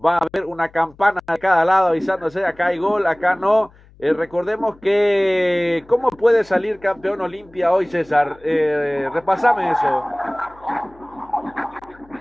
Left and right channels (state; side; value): noise; left; hum, 27 dB below the sound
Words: va a haber una campana de cada lado avisándose, acá hay gol, acá no. Recordemos que, ¿cómo puede salir campeón Olimpia hoy, César? Repasame eso.